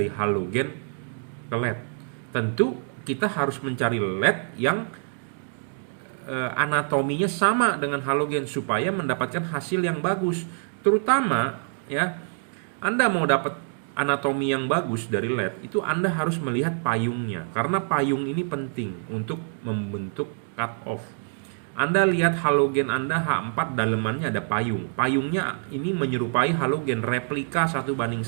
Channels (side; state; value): left; silent; 61 dB below the other